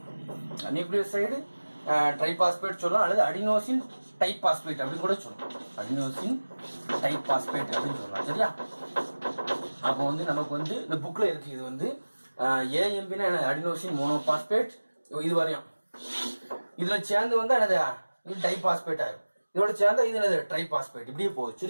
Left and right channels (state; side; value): inverted; both; correlation -1.00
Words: நியூக்ளியோசைடு ட்ரைபாஸ்பேட் சொல்லலாம், அல்லது அடினோசின் டைபாஸ்பேட் அப்படின்னு கூட சொல்லலாம். அடினோசின் டைபாஸ்பேட் அப்படின்னு சொல்லலாம். சரியா? அப்போ நமக்கு இந்த புக்ல இருக்கு. இது AMPனா அடினோசின் மோனோபாஸ்பேட். இது வரையும் இதுல சேர்ந்து என்னது? இது டைபாஸ்பேட் ஆகும். இதோட சேர்ந்தா இது என்னது? ட்ரைபாஸ்பேட். இப்படியே போகுது.